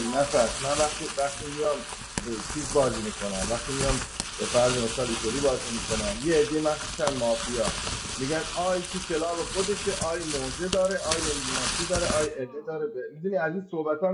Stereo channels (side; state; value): both; identical; correlation 1.00